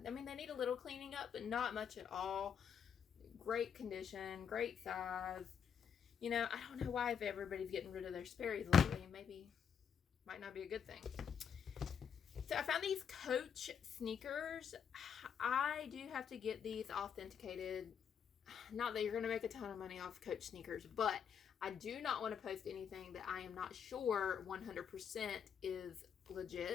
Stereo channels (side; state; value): right; quieter; 7.5 dB